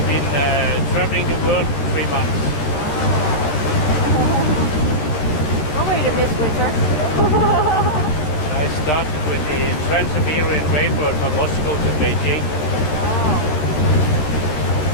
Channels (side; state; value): right; late; 13 ms